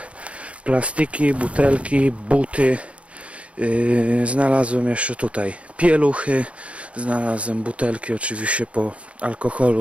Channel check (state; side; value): late; left; 0.062 ms